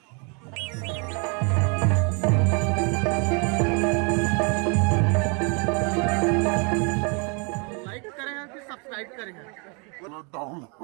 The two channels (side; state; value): left; quieter; 34.5 dB